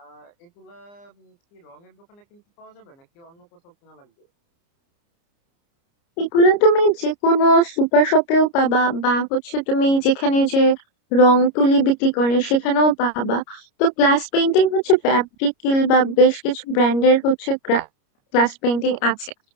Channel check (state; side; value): late; right; 29 ms